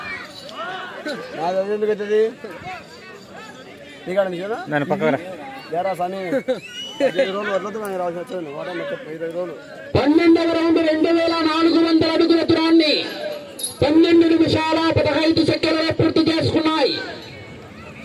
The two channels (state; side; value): identical; both; correlation 1.00